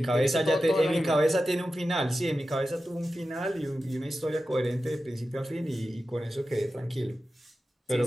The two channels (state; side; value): normal; both; correlation 0.92